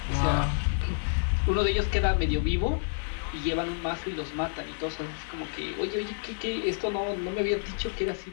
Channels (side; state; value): right; silent; digital silence